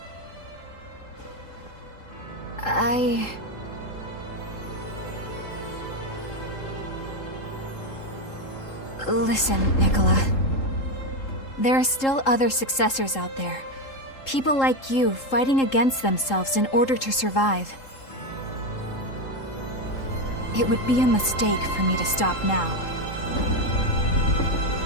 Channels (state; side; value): late; right; 3.8 ms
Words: Listen, Nicola. There are still other successors out there. People like you fighting against themselves in order to survive. It would be a mistake for me to stop now.